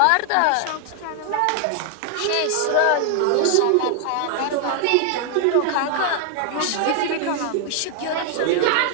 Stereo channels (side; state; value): both; different; correlation 0.00